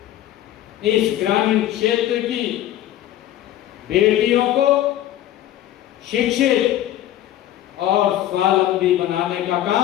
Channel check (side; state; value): right; quieter; 12.8 dB